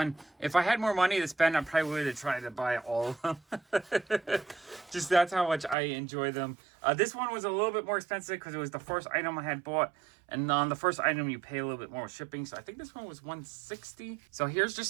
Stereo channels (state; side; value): drops out; left; at 5.8 s